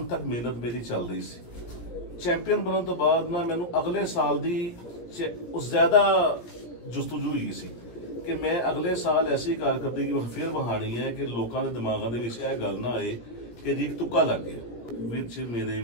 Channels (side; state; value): right; late; 17 ms